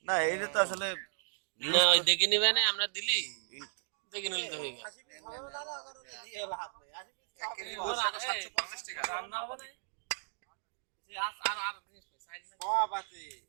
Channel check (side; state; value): left; silent; digital silence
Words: না এইটা তো আসলে না ওই দেখে নিবে না আমরা দিলি দেখে নিলে তো হয়ে গেল রান্না হবে